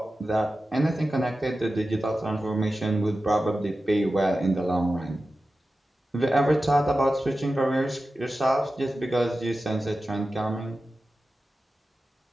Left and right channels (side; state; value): both; normal; correlation 0.94